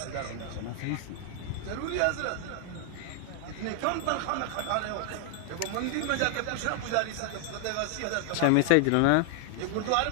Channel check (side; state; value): both; different; correlation 0.00